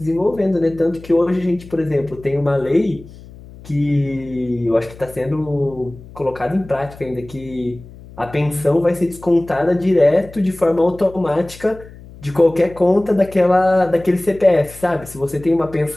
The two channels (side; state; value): left; noise; hum, 19 dB below the sound